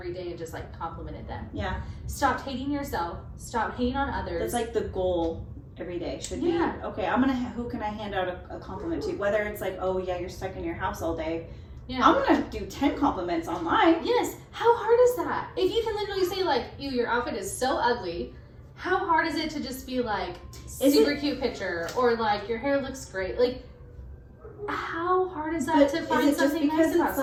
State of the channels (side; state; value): both; identical; correlation 1.00